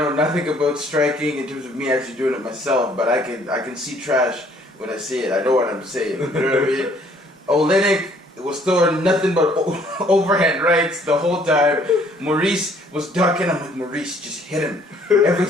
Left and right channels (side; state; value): both; normal; correlation 0.61